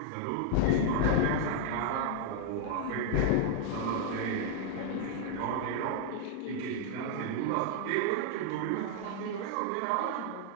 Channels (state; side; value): different; both; correlation -0.01